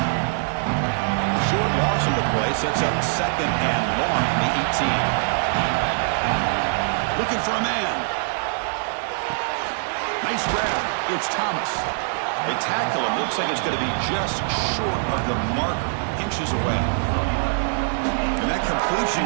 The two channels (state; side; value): silent; left; digital silence